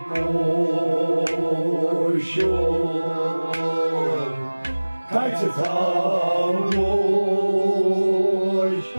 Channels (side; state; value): both; inverted; correlation -1.00